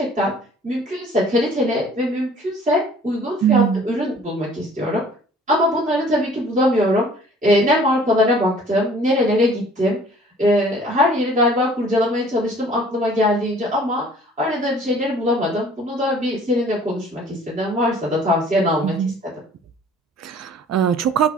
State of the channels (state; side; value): normal; both; correlation 0.52